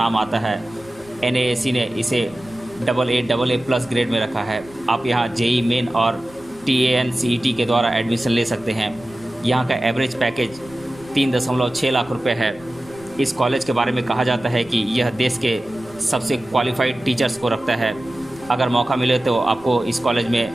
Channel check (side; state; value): right; noise; rumble, 25 dB below the sound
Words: आता है। NAAC ने इसे AA+ ग्रेड में रखा है। आप यहाँ JEE मेन और TANCET के द्वारा एडमिशन ले सकते हैं। यहाँ का एवरेज पैकेज 3.6 लाख रुपए है। इस कॉलेज के बारे में कहा जाता है कि यह देश के सबसे क्वालिफाइड टीचर्स को रखता है। अगर मौका मिले तो आपको इस कॉलेज